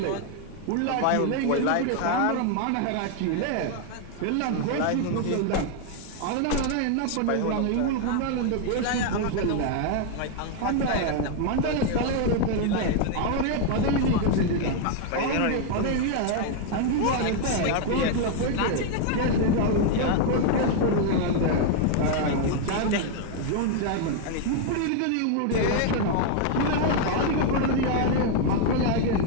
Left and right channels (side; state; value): both; different; correlation 0.00